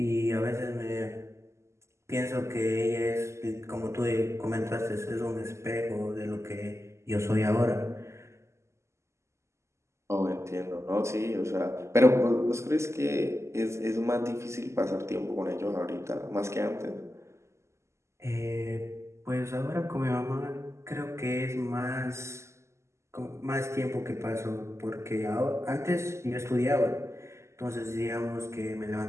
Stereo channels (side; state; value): left; late; 0.13 ms